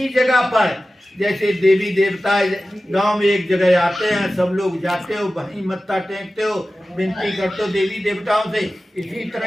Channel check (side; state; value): both; normal; correlation 0.95